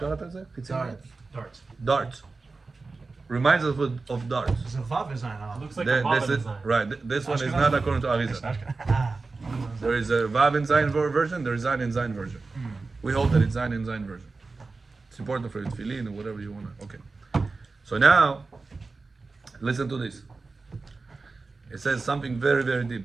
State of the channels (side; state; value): left; quieter; 3.9 dB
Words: Darts. Reminds us of darts. It's a vav design. Looks like The- a Baba this is, design. right. This one is Ashkenaz. not according to Arizal. There is a Vav in Zayin version. There is Zayin in Zayin version. We hold that it's Zayin in Zayin version. It's important for tefillin or whatever you wanna. Okay. So now, listen to this. It says something very, very